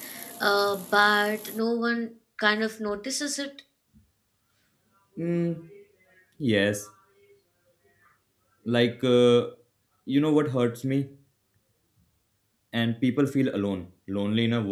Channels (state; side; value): identical; both; correlation 1.00